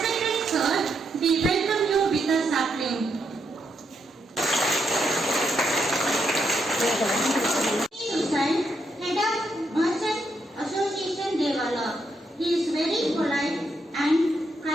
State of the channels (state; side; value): normal; both; correlation 0.79